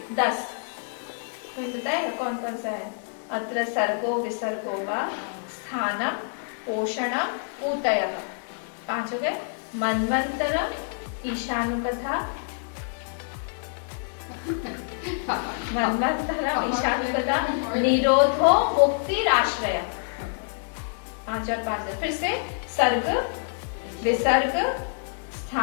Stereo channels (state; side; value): silent; right; digital silence